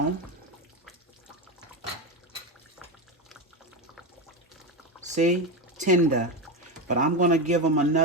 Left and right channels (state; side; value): normal; both; correlation 0.15